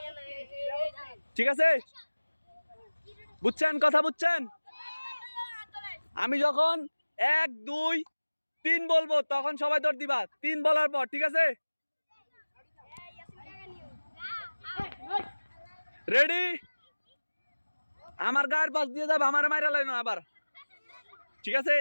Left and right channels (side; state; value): both; inverted; correlation -1.00